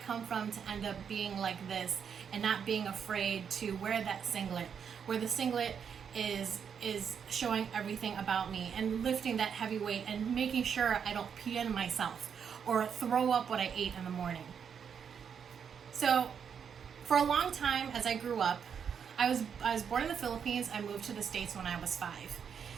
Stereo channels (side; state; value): left; quieter; 7.3 dB